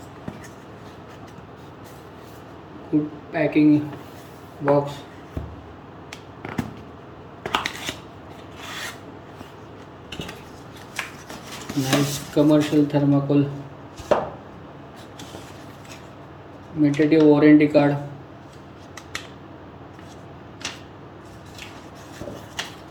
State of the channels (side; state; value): both; identical; correlation 1.00